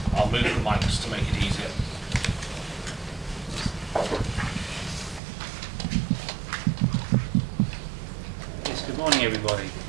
I'll move the mics to make it easier. Yes, good morning, everybody.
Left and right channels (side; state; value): left; drops out; at 5.2 s